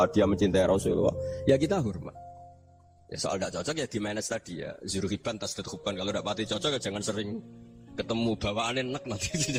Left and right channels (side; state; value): both; identical; correlation 1.00